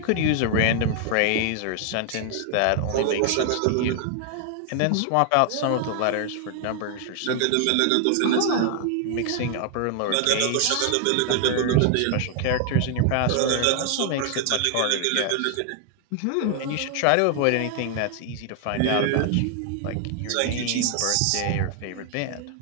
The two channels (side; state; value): both; different; correlation 0.00